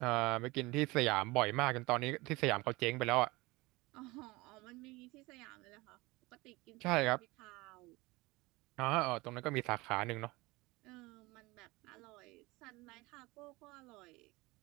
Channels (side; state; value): left; quieter; 22.3 dB